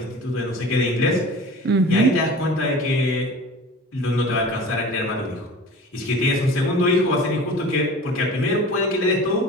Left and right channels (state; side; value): normal; both; correlation 0.39